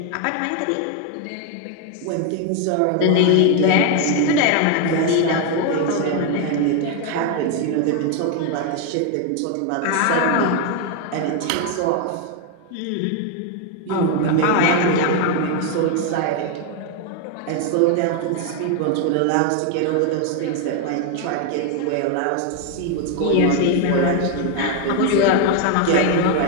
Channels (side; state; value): both; different; correlation 0.01